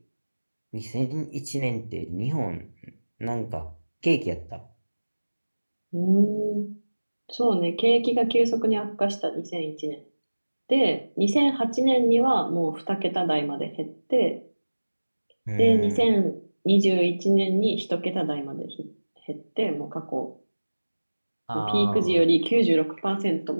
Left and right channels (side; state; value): both; inverted; correlation -1.00